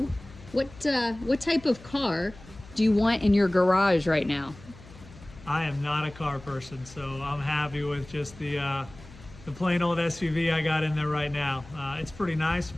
what type of car do you want in your garage right now? I am not a car person, so I'm happy with just the plain old SUV I got in there right now. It's pretty nice,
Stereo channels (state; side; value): noise; left; hum, 20 dB below the sound